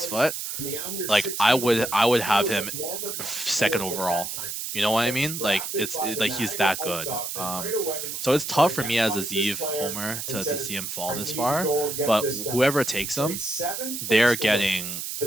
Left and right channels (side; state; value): right; noise; hiss, 5 dB below the sound